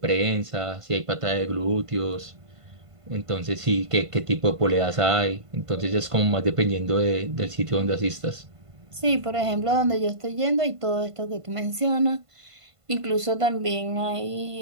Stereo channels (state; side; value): late; left; 1.5 ms